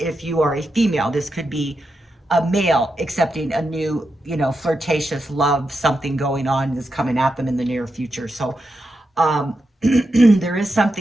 you are a female, this could be a male accepting a new, you know, flirtatious love, something going on that's coming at them in the near future. So there is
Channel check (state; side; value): normal; both; correlation 0.87